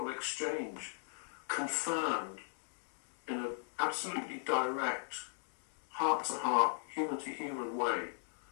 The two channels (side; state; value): right; silent; digital silence